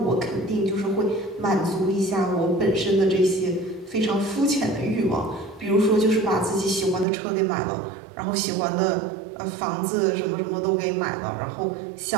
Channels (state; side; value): drops out; left; at 7.1 s